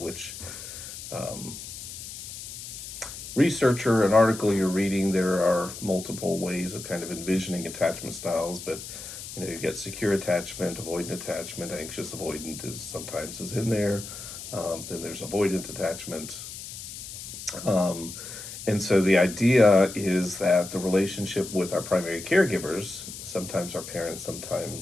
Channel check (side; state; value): left; noise; hiss, 11 dB below the sound